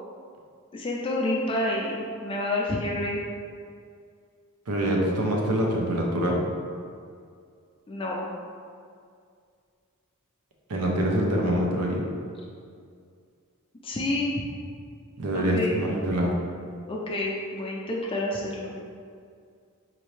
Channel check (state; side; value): normal; both; correlation 0.41